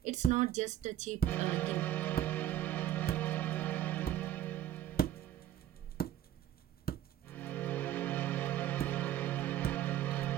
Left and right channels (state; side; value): quieter; left; 12.0 dB